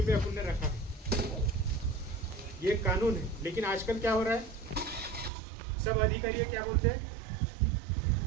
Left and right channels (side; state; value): left; drops out; at 5.3 s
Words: पे अपन ने रखा है, ये कानून है। लेकिन आजकल क्या हो रहा है, सब अधिकारी क्या बोलते हैं,